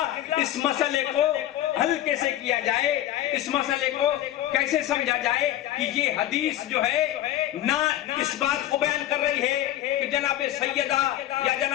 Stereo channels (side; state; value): right; quieter; 13.3 dB